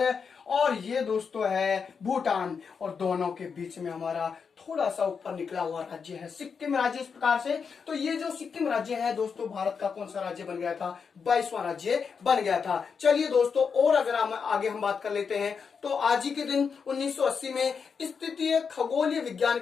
और ये दोस्तों है भूटान, और दोनों के बीच में हमारा थोड़ा सा ऊपर निकला हुआ राज्य है सिक्किम राज्य इस प्रकार से। तो ये जो सिक्किम राज्य है दोस्तों भारत का कौन सा राज्य बन गया था? 22वां राज्य बन गया था। चलिए दोस्तों, और अगर आगे हम बात कर लेते हैं तो आज ही के दिन 1980 में स्थितीय खगोलीय विज्ञान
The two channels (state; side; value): quieter; right; 5.9 dB